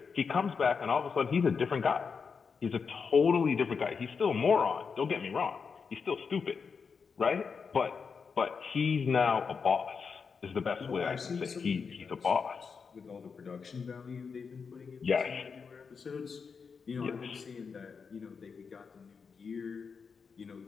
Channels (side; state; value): right; quieter; 5.6 dB